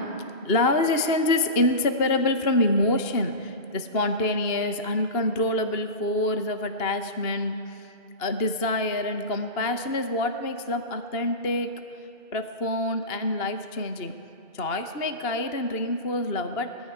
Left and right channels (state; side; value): late; right; 2.8 ms